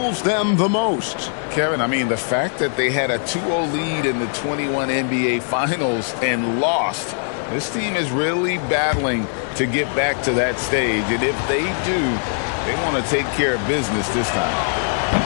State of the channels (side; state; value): right; silent; digital silence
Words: them the most? Kevin, I mean, the fact that they had a 2-0 lead in the 21 NBA Finals and lost. This team is really battling to get back to that stage. And if they do, they want to take care of business this